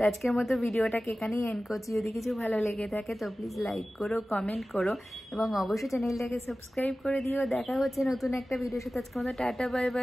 আজকের মতো ভিডিওটাকে এখানেই এন্ড করছি। যদি কিছু ভালো লেগে থাকে তো প্লিজ লাইক করো, কমেন্ট করো, এবং অবশ্যই চ্যানেলটাকে সাবস্ক্রাইব করে দিও। দেখা হচ্ছে নতুন একটা ভিডিওর সাথে। আজকের মতো tata, bye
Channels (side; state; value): both; normal; correlation 0.96